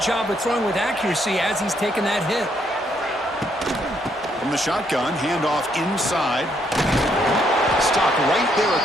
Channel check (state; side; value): normal; both; correlation 0.72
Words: of throwing with accuracy as he's taking that hit. From the shotgun, handoff inside. Stop right there at